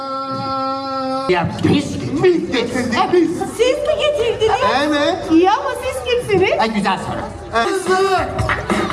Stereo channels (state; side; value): identical; both; correlation 1.00